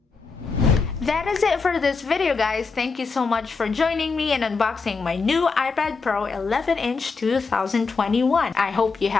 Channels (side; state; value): right; quieter; 4.6 dB